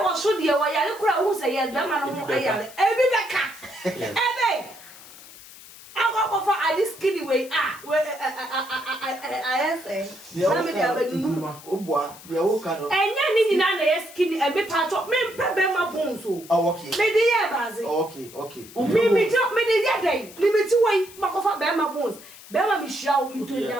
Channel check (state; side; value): noise; left; hiss, 19 dB below the sound